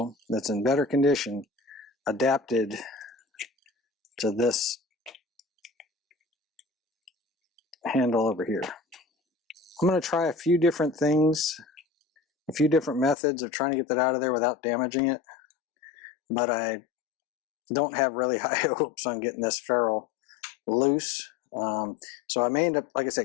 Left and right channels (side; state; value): right; drops out; at 13.2 s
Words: that's in better condition adapted to this handle over here. I'm going to try a few different things, a few different methods of trying to get that out of there without damaging it. but I don't have really high hopes on getting this ferrule loose. So I may end up, like I